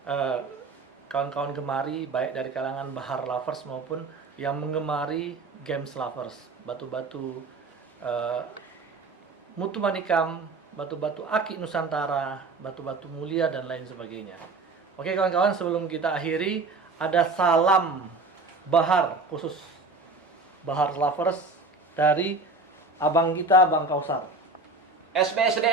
kawan-kawan gemari, baik dari kalangan bahar lovers maupun yang menggemari games lovers. Batu-batu mutu manikam, batu-batu akik Nusantara, batu-batu mulia, dan lain sebagainya. Oke kawan-kawan, sebelum kita akhiri, ada salam bahar khusus bahar lovers dari abang kita, Bang Kausar.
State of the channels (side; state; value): left; quieter; 3.5 dB